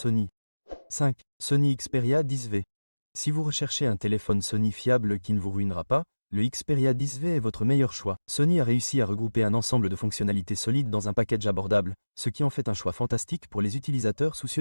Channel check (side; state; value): both; inverted; correlation -1.00